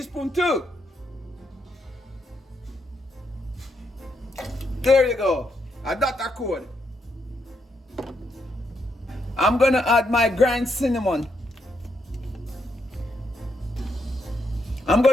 too. There you go. I got that code. I'm gonna add my ground cinnamon. I'm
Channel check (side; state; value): both; normal; correlation 0.79